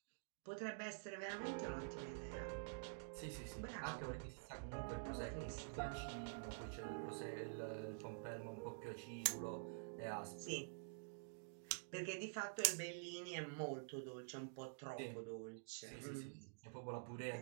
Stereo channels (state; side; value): silent; left; digital silence